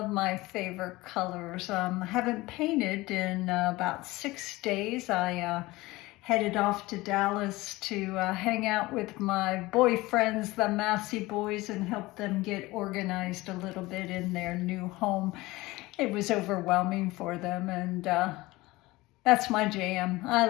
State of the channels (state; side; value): quieter; right; 20.2 dB